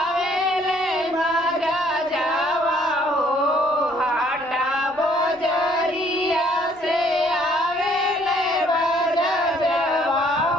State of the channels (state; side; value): noise; left; rumble, 29 dB below the sound